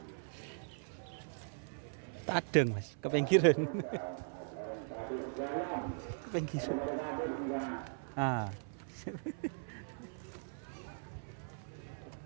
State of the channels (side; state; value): left; silent; 52 dB below the other